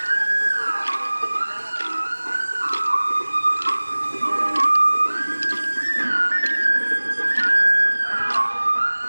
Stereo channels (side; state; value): both; inverted; correlation -1.00